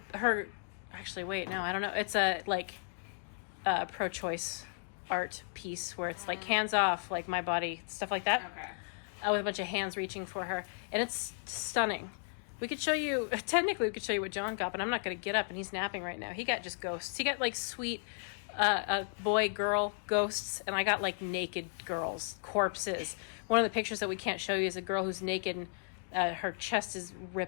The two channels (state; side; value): silent; right; digital silence